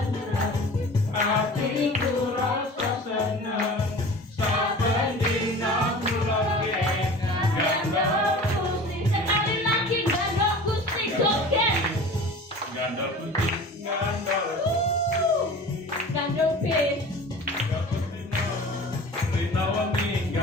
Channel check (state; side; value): normal; both; correlation 0.40